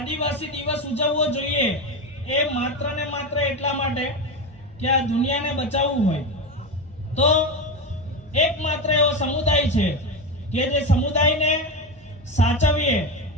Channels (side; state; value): both; normal; correlation 0.18